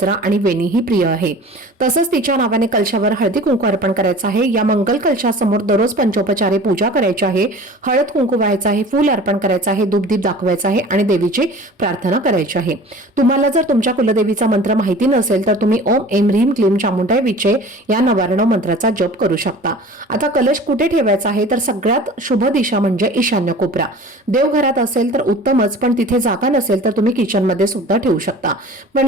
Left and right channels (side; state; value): both; normal; correlation 0.42